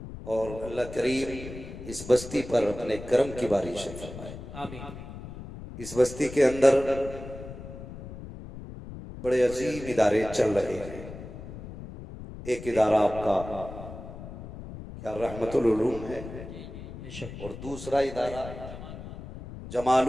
और अल्लाह करीम इस बस्ती पर अपने करम की बारिश फरमाए, आमीन। इस बस्ती के अंदर बड़े अजीब इदारे चल रहे हैं। एक इदारा आपका क्या रहमतुल उलूम है, और दूसरा इदारा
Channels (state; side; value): noise; left; rumble, 12 dB below the sound